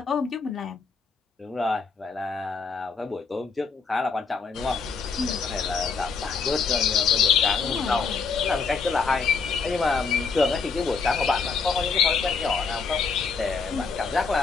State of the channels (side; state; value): right; quieter; 5.1 dB